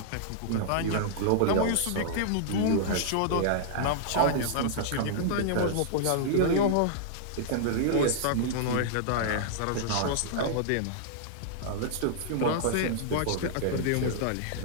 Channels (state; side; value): different; both; correlation -0.01